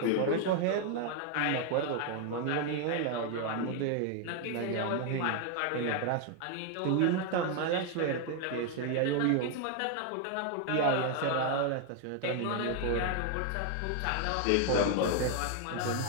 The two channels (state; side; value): different; both; correlation 0.01